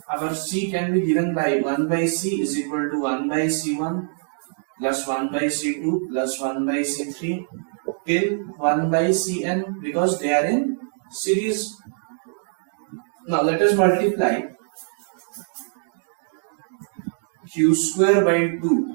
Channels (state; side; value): silent; left; digital silence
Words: our C can be given by 1 by C is equal to 1 by C1 plus 1 by C2 plus 1 by C3 till 1 by Cn because they are in series. Now let us multiply Q square by 2